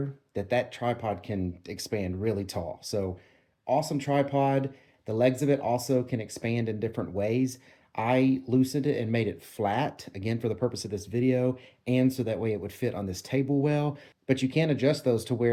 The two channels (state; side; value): identical; both; correlation 1.00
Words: that tripod can expand really tall. So awesome tripod. The legs of it also can expand in different ways. I loosened it and made it flat, again, for the purpose of this video, and so that way it would fit on this table well. But you can adjust those to